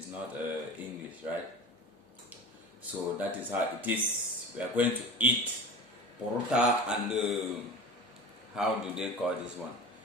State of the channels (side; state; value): both; normal; correlation 0.34